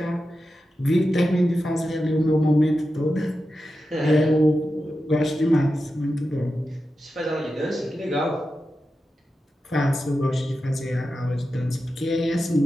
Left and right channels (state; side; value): normal; both; correlation 0.91